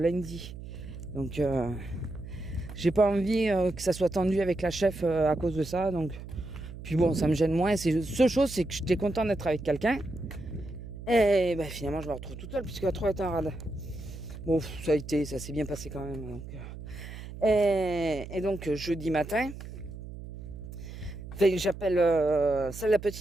Donc, j'ai pas envie que ça soit tendu avec la chef à cause de ça. Donc, puis bon, ça me gêne moins. Seule chose, c'est que j'étais content d'être avec quelqu'un. Et finalement, je me retrouve toute seule, puisque la 3 est en rade. Bon, ça s'est bien passé quand même. Donc, et donc, jeudi matin, j'appelle celle la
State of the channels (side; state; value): right; noise; hum, 11 dB below the sound